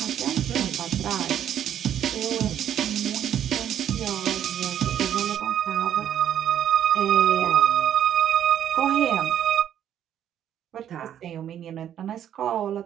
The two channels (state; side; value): quieter; left; 10.1 dB